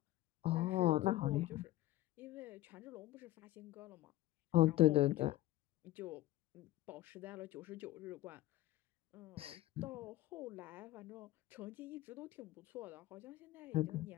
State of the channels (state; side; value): quieter; right; 16.2 dB